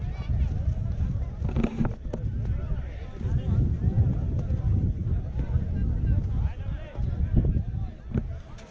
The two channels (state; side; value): identical; both; correlation 1.00